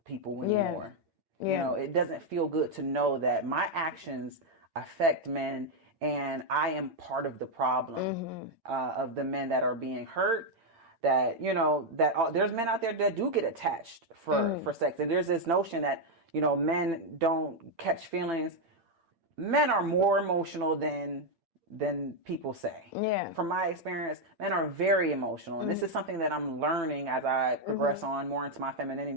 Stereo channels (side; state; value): left; late; 8.8 ms